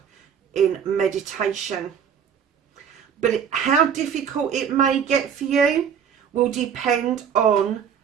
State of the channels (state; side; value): quieter; left; 7.7 dB